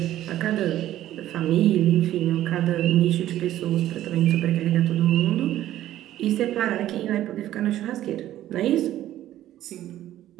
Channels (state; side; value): quieter; left; 13.2 dB